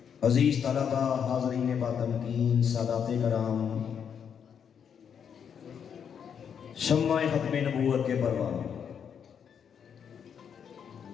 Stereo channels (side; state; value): right; quieter; 7.6 dB